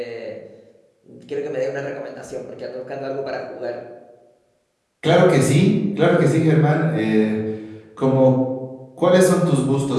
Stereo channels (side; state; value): both; identical; correlation 1.00